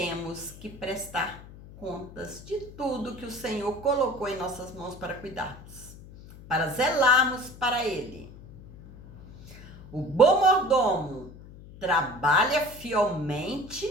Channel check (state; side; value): noise; left; hum, 18 dB below the sound